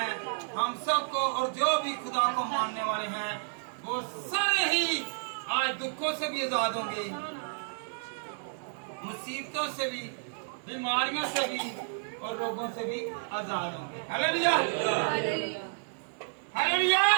हम सबको और जो भी खुदा को मानने वाले हैं, वो सारे ही आज दुखों से भी आजाद होंगे, मुसीबतों से भी, बीमारियों से भी और रोगों से भी आजाद होंगे। हालेलुया। हालेलुया।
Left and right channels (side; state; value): left; silent; digital silence